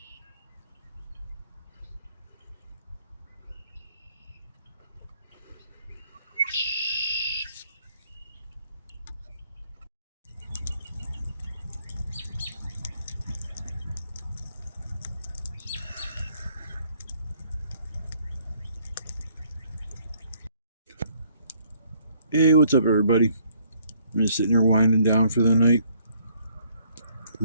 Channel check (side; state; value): both; inverted; correlation -0.66